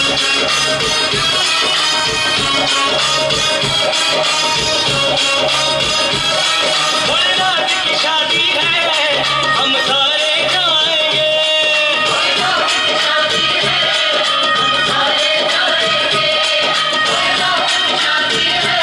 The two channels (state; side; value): identical; both; correlation 1.00